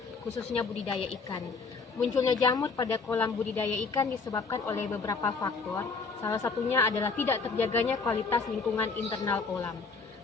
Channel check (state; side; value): quieter; right; 4.6 dB